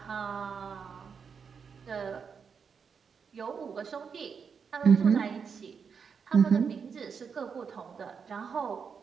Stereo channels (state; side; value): quieter; left; 6.2 dB